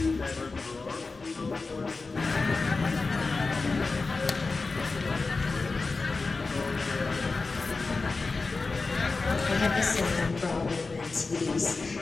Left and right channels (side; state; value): right; quieter; 3.9 dB